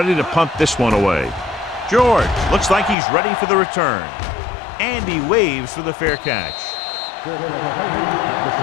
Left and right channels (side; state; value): right; drops out; at 3.0 s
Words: to punt this one away. George looks like he's ready for the return. And he waves for the fair catch. Fair catch made at